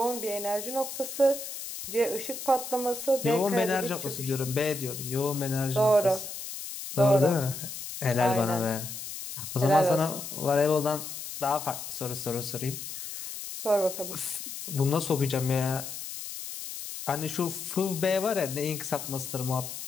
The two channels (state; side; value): noise; left; hiss, 8 dB below the sound